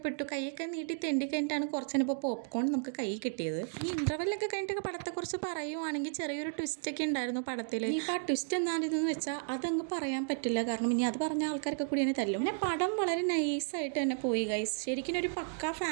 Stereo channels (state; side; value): silent; left; digital silence